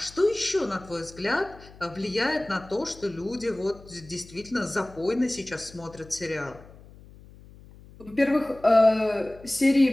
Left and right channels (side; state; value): left; noise; hum, 21 dB below the sound